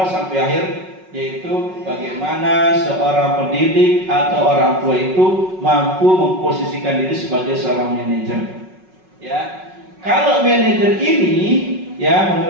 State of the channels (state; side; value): late; left; 5.4 ms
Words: sampai akhir, yaitu bagaimana seorang pendidik atau orang tua itu mampu memposisikan diri sebagai seorang manajer. Ya, kalau manajer ini ya